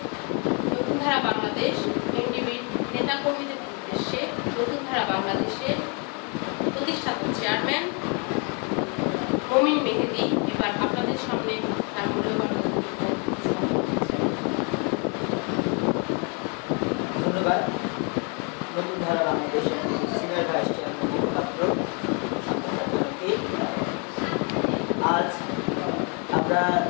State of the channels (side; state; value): right; quieter; 35.6 dB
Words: ধারা বাংলাদেশ এনডিবির নেতা কর্মীদের উদ্দেশ্যে নতুন ধারা বাংলাদেশের প্রতিষ্ঠাতা চেয়ারম্যান মমিন মেহেদী এবার আপনাদের সামনে তার মূল্যবান ধন্যবাদ। নতুন ধারা বাংলাদেশের সিনিয়র ভাইস চেয়ারম্যান পাত্র, আজ আমরা